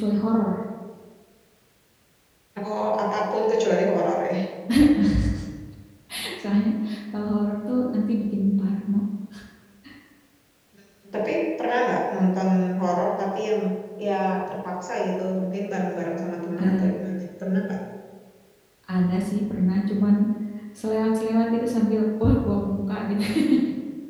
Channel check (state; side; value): identical; both; correlation 1.00